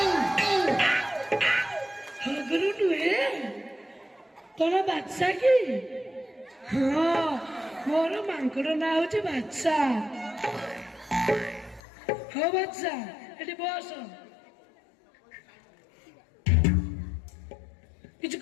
ହଗୁରୁ ନୁହେଁ, ତୋର ବାଦଶା କି? ହଁ, ମୋର ମାଙ୍କଡ ନାଁ ହଉଛି ବାଦଶା। ହଉ ବାଦଶା, ଏଠି ବସ। କିଛି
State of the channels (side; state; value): right; drops out; at 11.8 s